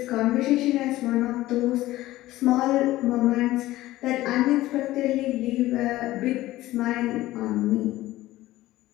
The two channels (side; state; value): right; quieter; 16.4 dB